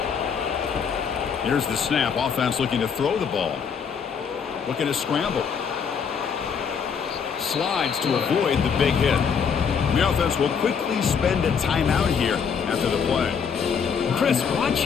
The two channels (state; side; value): quieter; right; 6.6 dB